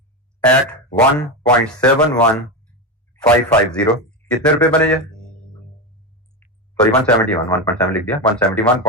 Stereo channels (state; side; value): normal; both; correlation 0.15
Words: at 1.71550। कितने रुपए बने ये? सॉरी 171, 1.7 लिख दिया,